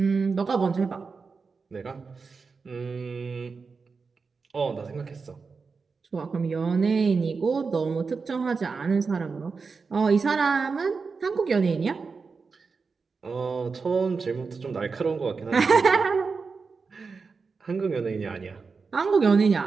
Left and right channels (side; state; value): left; quieter; 4.8 dB